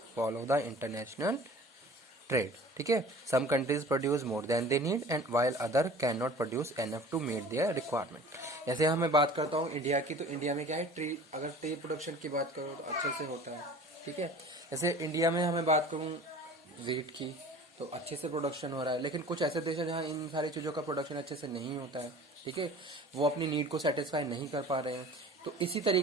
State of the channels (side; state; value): both; normal; correlation 0.44